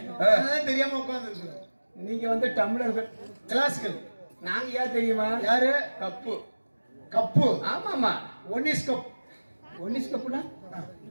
அதான் தெரியாம உட்கார்ந்து இருக்கோம். நீங்க வந்து தமிழர்கள் கிளாசிக்கல். நாங்க யார் தெரியுமா? யாரு? கப்பு. கப்பு? ஆமா ஆமா. One is cup. ஒன்னிஸ் கப்புனா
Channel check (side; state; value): both; inverted; correlation -1.00